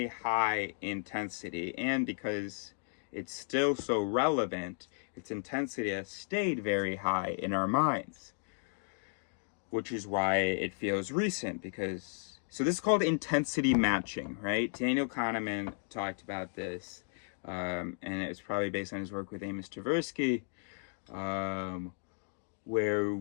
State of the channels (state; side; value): silent; right; digital silence